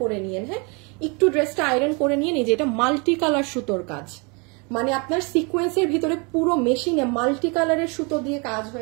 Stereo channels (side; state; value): left; quieter; 31.4 dB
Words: করে নিয়েন। হ্যাঁ, একটু ড্রেসটা আয়রন করে নিয়ে নিয়ে, এটা মাল্টি কালার সুতোর কাজ, মানে আপনার সিকোয়েন্সের ভিতরে পুরো মেশিনে মাল্টি কালারের সুতো দিয়ে কাজ